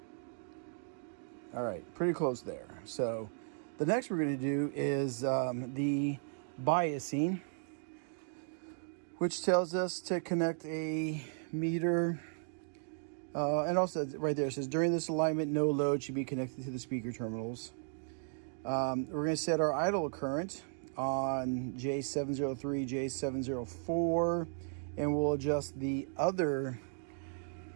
all right, pretty close there. So the next we're going to do is the biasing, which tells us to connect a meter. And also right there, it says during this alignment, no load should be connected to the speaker terminals. We're going to set our idle current on J703, J704, and we'll adjust the other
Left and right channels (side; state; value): left; silent; digital silence